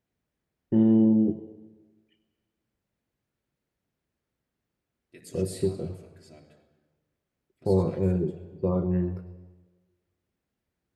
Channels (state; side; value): identical; both; correlation 1.00